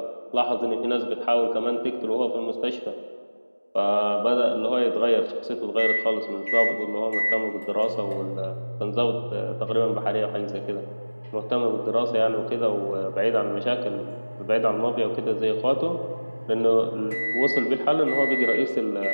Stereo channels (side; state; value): both; inverted; correlation -1.00